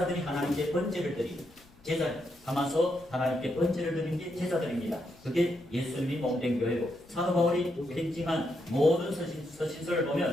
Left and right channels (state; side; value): noise; left; rumble, 27 dB below the sound